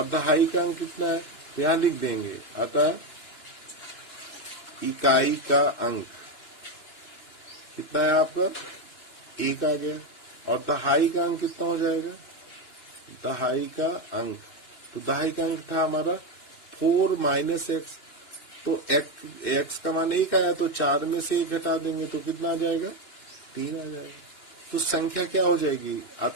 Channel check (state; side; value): late; right; 2.9 ms